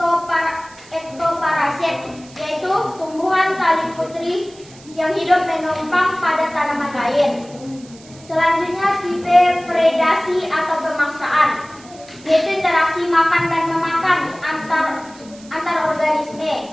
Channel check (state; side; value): noise; right; hiss, 23 dB below the sound